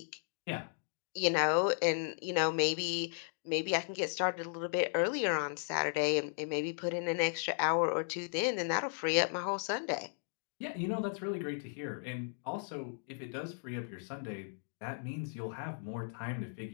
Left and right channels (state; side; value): silent; right; digital silence